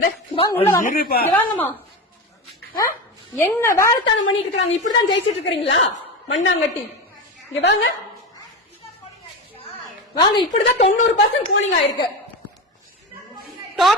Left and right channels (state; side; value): normal; both; correlation 0.21